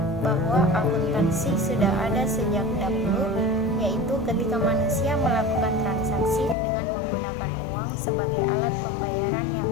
bahwa akuntansi sudah ada sejak dahulu, yaitu ketika manusia melakukan transaksi dengan menggunakan uang sebagai alat pembayaran yang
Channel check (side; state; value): right; drops out; at 6.6 s